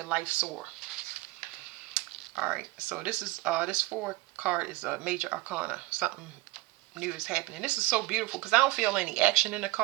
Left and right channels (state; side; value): quieter; left; 20.3 dB